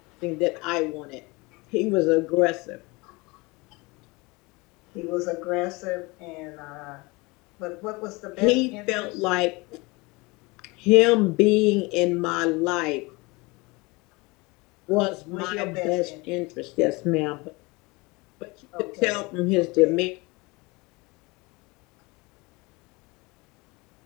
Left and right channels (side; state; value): right; quieter; 25.1 dB